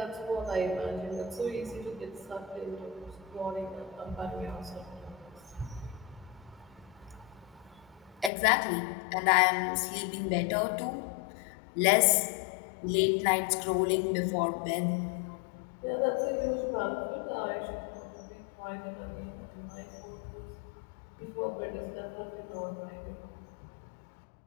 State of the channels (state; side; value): drops out; right; at 8.3 s